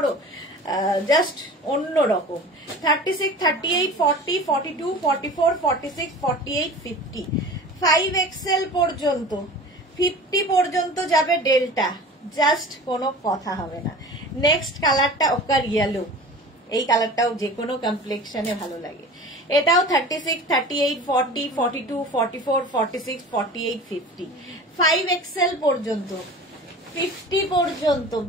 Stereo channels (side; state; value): both; normal; correlation 0.38